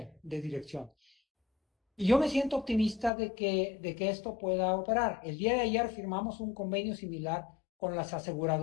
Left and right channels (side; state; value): right; drops out; at 3.1 s